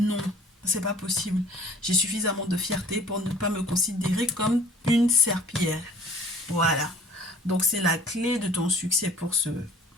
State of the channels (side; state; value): both; normal; correlation 0.50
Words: c'est pas possible. J'ai suffisamment de fierté pour ne pas me considérer comme une serpillière. Voilà. Donc c'est la clé de ton succès pour